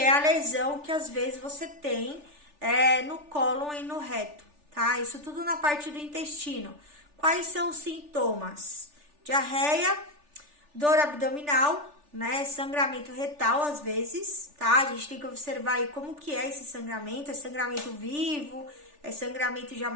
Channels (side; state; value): left; late; 3.4 ms